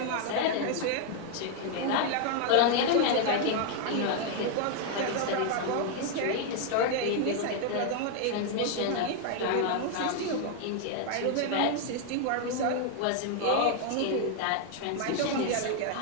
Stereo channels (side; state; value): both; different; correlation 0.00